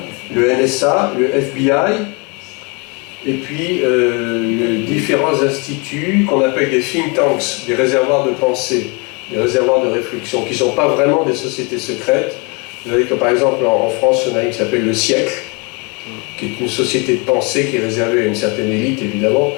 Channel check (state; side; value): quieter; right; 31.5 dB